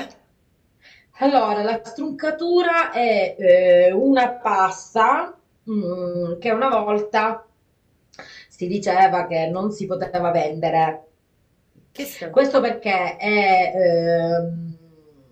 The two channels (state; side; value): identical; both; correlation 1.00